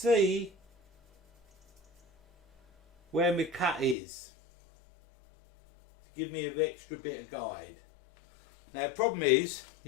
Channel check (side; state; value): right; drops out; at 4.0 s